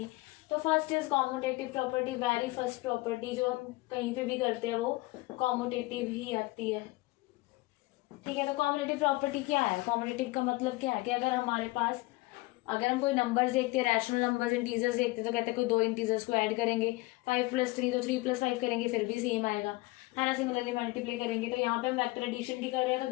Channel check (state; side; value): quieter; right; 21.7 dB